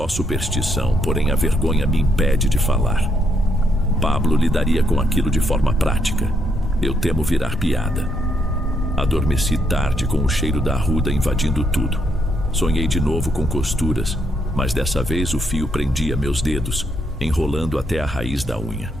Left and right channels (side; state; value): both; normal; correlation 0.75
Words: superstição, porém a vergonha me impede de falar. Pablo lidaria com aquilo de forma prática. Eu temo virar piada. Adormeci tarde com o cheiro da arruda invadindo tudo. Sonhei de novo com costuras, mas dessa vez o fio prendia meus dedos, enrolando até a raiz da unha.